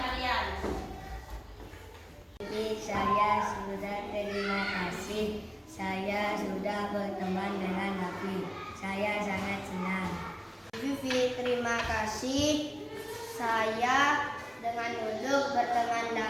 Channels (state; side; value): identical; both; correlation 1.00